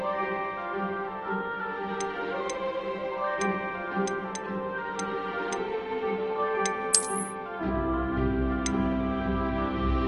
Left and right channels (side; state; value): left; noise; rumble, 27 dB below the sound